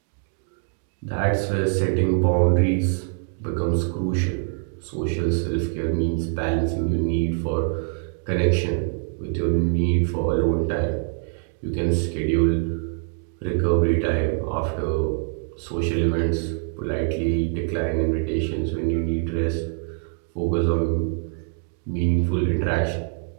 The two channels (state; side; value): silent; left; 62 dB below the other